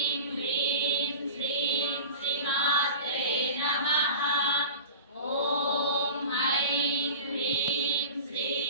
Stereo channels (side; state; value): both; inverted; correlation -0.35